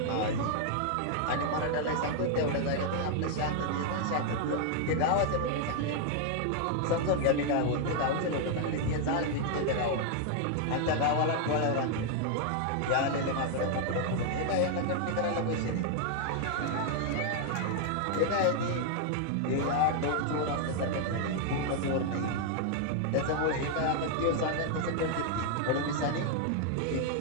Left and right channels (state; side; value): different; both; correlation 0.00